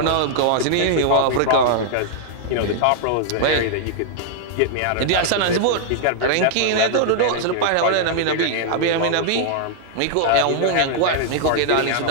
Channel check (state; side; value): different; both; correlation -0.01